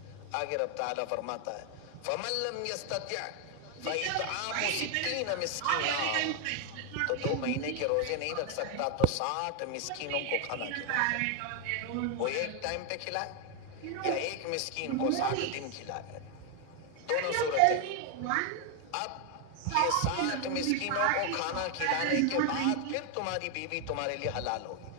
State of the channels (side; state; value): both; different; correlation 0.01